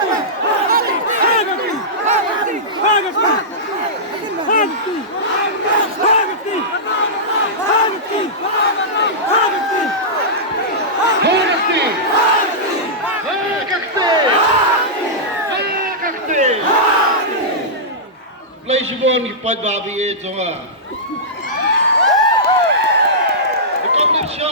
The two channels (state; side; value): normal; both; correlation -0.14